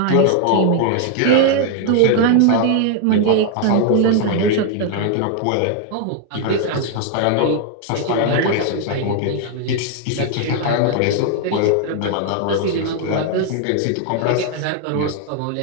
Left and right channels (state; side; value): different; both; correlation 0.00